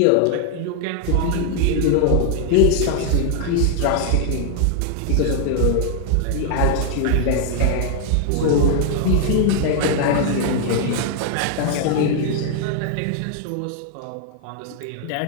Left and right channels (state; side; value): different; both; correlation 0.00